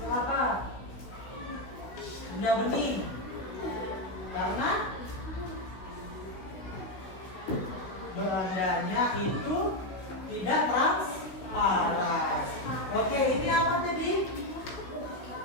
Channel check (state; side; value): late; right; 16 ms